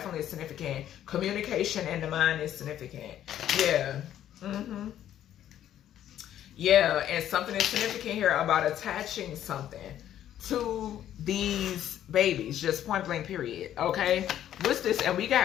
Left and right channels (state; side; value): quieter; right; 11.3 dB